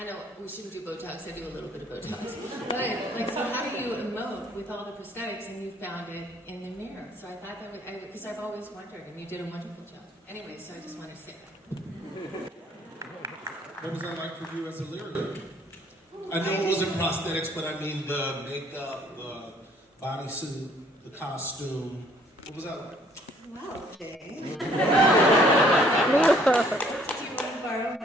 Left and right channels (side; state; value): both; normal; correlation 0.61